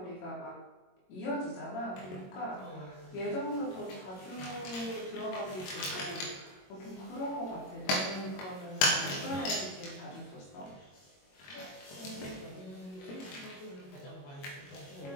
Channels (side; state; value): right; late; 22 ms